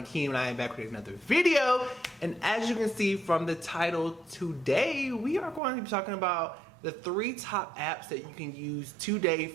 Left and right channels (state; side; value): drops out; left; at 5.6 s